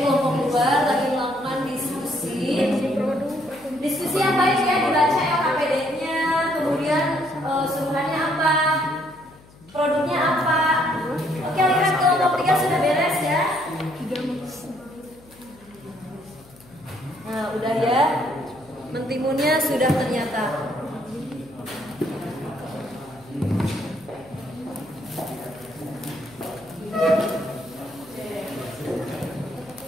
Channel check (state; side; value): noise; left; hum, 25 dB below the sound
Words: kelompok 2 lagi melakukan diskusi. Diskusi yang baik ya, dibaca LKPD-nya, kemudian suruhannya apa, produknya apa. Oke, lihat kelompok 3 sudah beres ya. Nah, udah ya. Mentimunnya sudah ternyata.